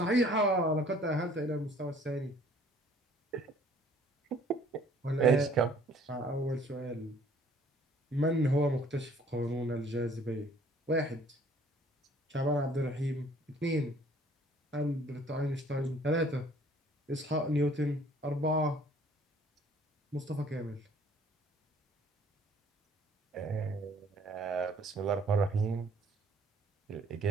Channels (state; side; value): normal; both; correlation 0.57